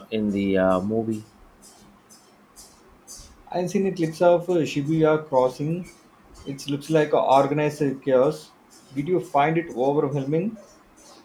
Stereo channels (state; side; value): identical; both; correlation 1.00